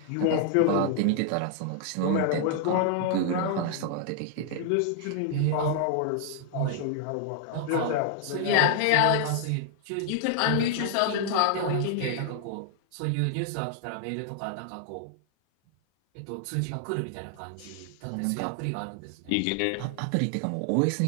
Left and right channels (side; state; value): both; different; correlation 0.00